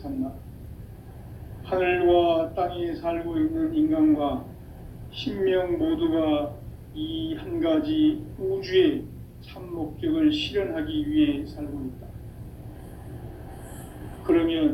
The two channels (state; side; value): identical; both; correlation 1.00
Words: 하늘과 땅에 살고 있는 인간과 신명 모두가 이 한 가지 우주의 참 목적을 실현하기 위해 살고 있다.